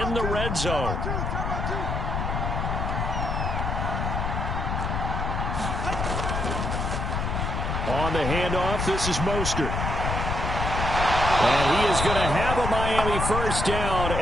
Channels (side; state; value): left; noise; rumble, 1 dB below the sound